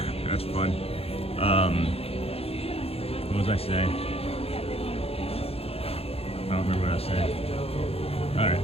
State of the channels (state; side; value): late; right; 0.29 ms